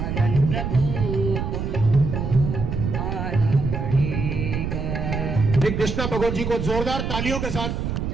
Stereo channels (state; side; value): noise; right; rumble, 3 dB below the sound